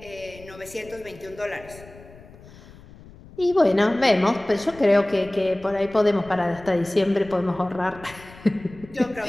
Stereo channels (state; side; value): noise; left; rumble, 20 dB below the sound